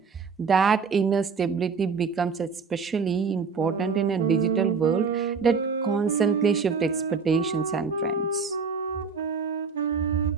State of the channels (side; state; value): left; quieter; 5.3 dB